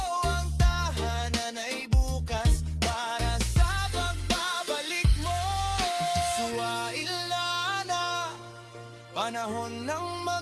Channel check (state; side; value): identical; both; correlation 1.00